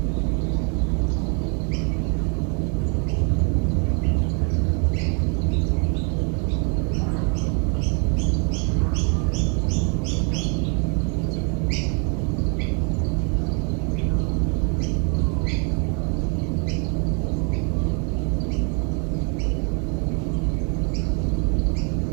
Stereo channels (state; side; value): quieter; left; 37.2 dB